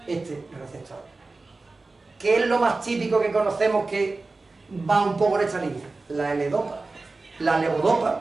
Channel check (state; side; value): quieter; left; 3.5 dB